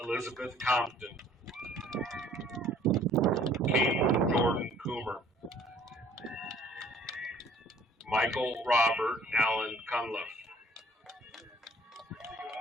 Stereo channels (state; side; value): normal; both; correlation 0.56